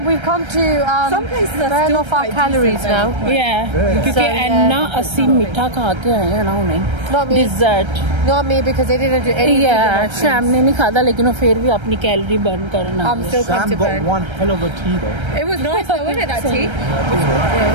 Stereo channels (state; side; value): late; left; 1.3 ms